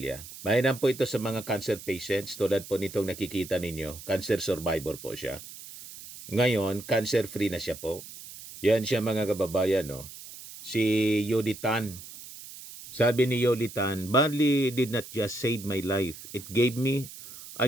Mainam po ito sa mga cancer patients. Tulad po nitong nakikita ninyo. Cancer survivor po siya. Ngayon, cancer-free na siya po. Yan siya, mga kababayan, no? Si Yoli Tan. Sabi ni Yoli Tan, barley did not just save my life. It gave me a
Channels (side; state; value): right; noise; hiss, 15 dB below the sound